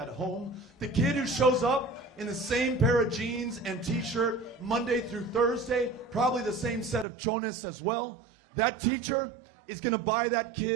home. The kid who shows up in the same pair of jeans and t-shirt Monday through Thursday, probably the same set of chones as well. That teacher is going to buy that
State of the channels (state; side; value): drops out; left; at 7.1 s